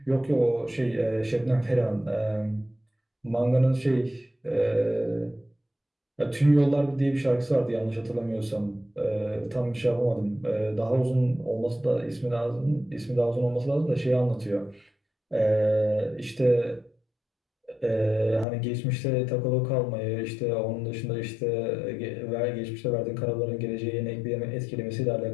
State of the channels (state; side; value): drops out; right; at 18.4 s